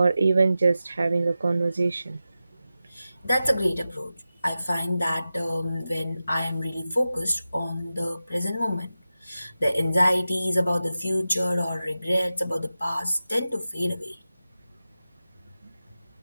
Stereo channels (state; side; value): inverted; both; correlation -0.93